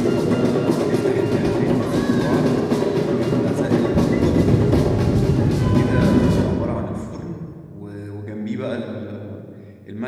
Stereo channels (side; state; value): both; identical; correlation 1.00